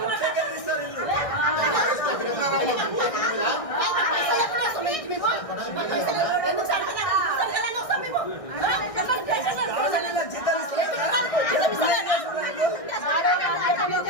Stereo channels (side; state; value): right; late; 1.6 ms